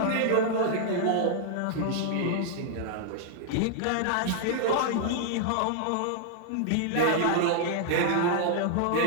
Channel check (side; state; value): both; different; correlation -0.01